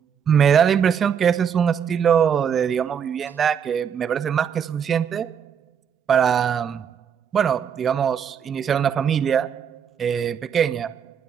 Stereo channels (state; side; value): quieter; left; 7.8 dB